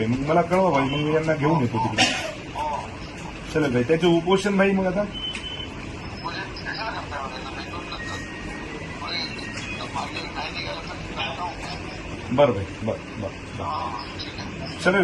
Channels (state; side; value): identical; both; correlation 1.00